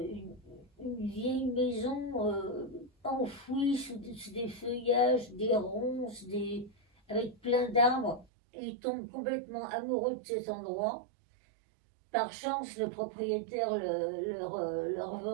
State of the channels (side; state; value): left; drops out; at 8.2 s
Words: vieille maison enfouie sous des feuillages, des ronces, avec plein d'arbres. Et ils tombent complètement amoureux de cet endroit. Par chance, le propriétaire leur